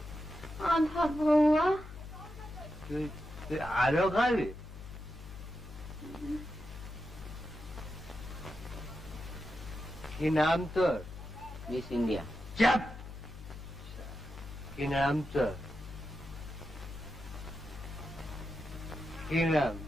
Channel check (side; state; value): left; noise; hum, 12 dB below the sound